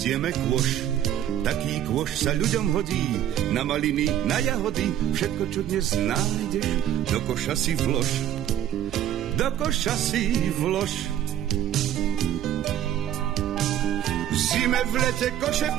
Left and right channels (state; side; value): quieter; left; 11.3 dB